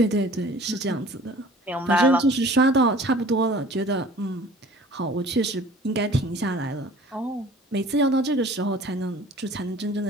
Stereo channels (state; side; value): normal; both; correlation 0.48